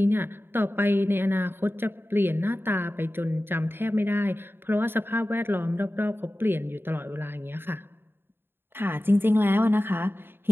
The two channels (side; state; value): left; late; 0.11 ms